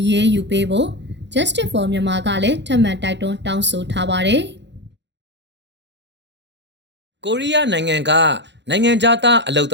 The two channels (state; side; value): late; left; 0.52 ms